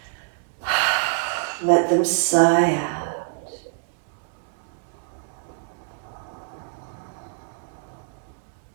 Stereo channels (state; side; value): silent; left; digital silence